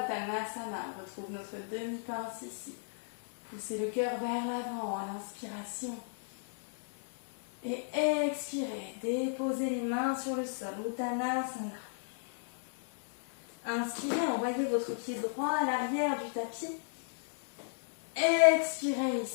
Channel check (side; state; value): right; silent; digital silence